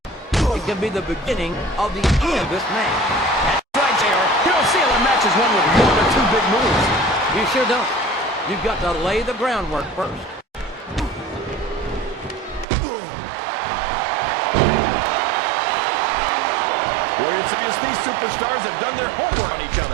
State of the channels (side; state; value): left; drops out; at 12.7 s